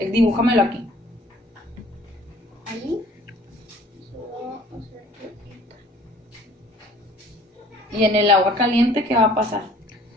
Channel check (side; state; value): both; normal; correlation 0.53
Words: aquí. Ahí. Y en el agua caliente, ¿qué va a pasar?